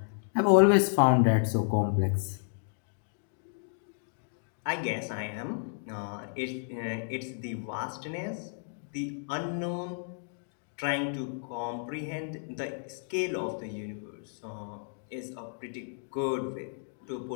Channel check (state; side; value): silent; right; digital silence